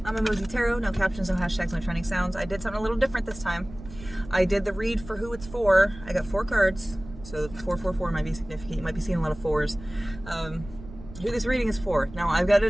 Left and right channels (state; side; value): noise; right; rumble, 15 dB below the sound